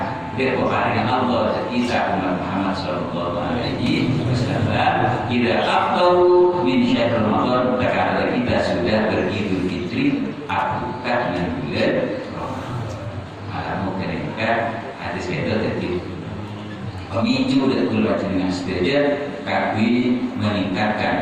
kepada Allah kita umat Muhammad sallallahu alaihi wasallam tidak afdalu min syahr Ramadan karena kita sudah beridul fitri akukat dengan bulan Ramadan. Malam mereka hadis itu tadi pemicu dan keluar dengan setuju kami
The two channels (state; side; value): identical; both; correlation 1.00